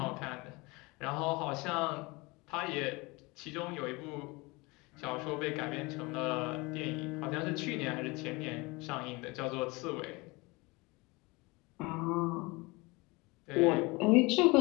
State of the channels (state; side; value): quieter; right; 24.9 dB